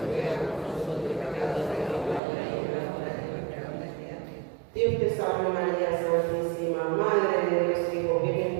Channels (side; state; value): left; drops out; at 2.2 s